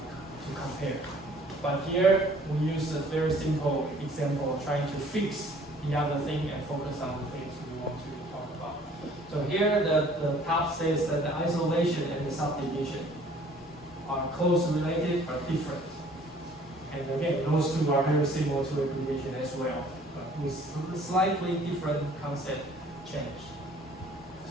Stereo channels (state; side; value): normal; both; correlation 0.55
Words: compare. But here, we use a very simple example trying to fix the other thing and focus on the things we want to talk about. So here, the top says that the isolation and the subdivision are close related but different. And again, those two are very similar to aggregation as well, but with slightly different concept change.